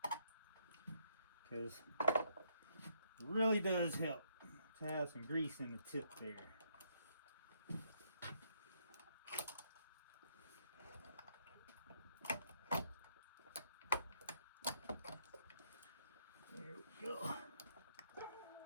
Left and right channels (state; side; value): inverted; both; correlation -0.73